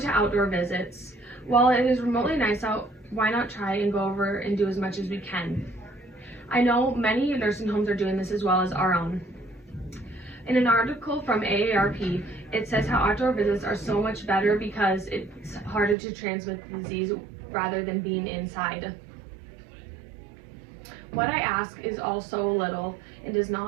outdoor visits. While it is remotely nice out, why not try and go over and do as much as we can? I know many nursing homes are doing this as well as our own. In an article from AARP, it says how outdoor visits are so much better because it's harder to transmit the disease rather than being inside. What I ask is also little and does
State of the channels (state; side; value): drops out; left; at 16.0 s